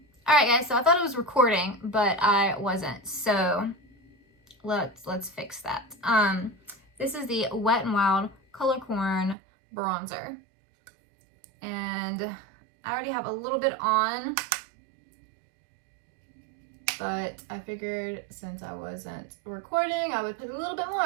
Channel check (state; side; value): drops out; left; at 9.3 s